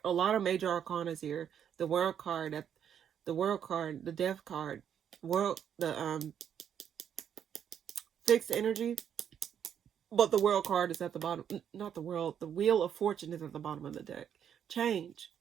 A lot of major arcanas here. The World card, the Death card, the fixed energy. But the World card is at the bottom. Not the World. The Wheel of Fortune is at the bottom of the deck. Change.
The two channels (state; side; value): quieter; left; 8.8 dB